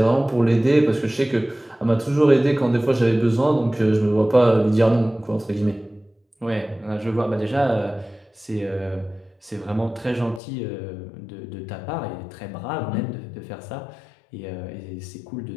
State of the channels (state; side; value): drops out; right; at 10.4 s